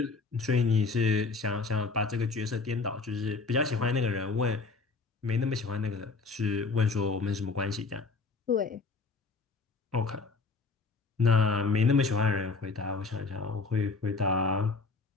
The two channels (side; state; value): right; quieter; 4.1 dB